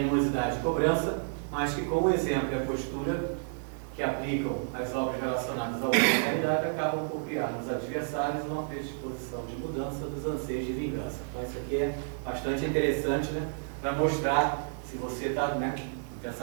e cobrança, mas que com o exemplo e a postura que aplicam as obras relacionadas à humanidade acabam por criar nos adversários uma predisposição de mudança dos anseios de vingança. Então isso aqui é bastante interessante, né, para mostrar se você está, né, com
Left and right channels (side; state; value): left; silent; digital silence